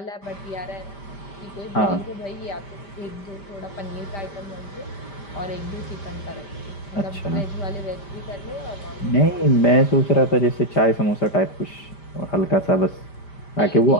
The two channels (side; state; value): right; late; 5.1 ms